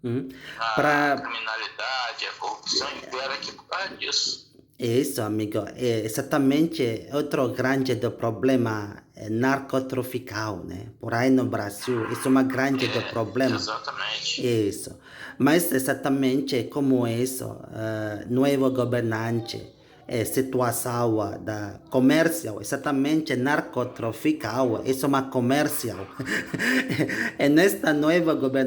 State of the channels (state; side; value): identical; both; correlation 1.00